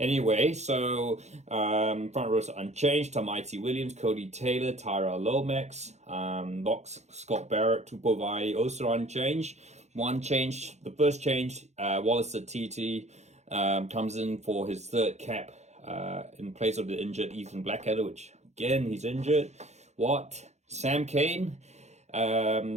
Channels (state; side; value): late; left; 0.33 ms